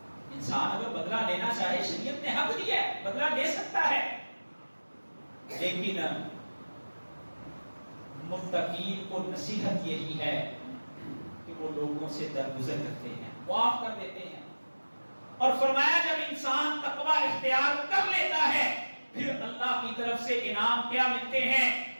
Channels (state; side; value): inverted; both; correlation -1.00